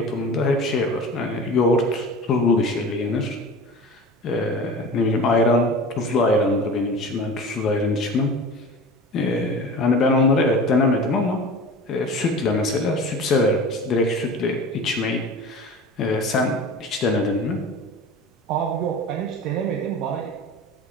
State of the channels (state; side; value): normal; both; correlation 0.36